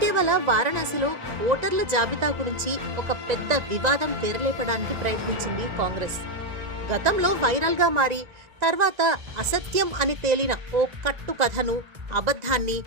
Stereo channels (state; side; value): late; left; 1.9 ms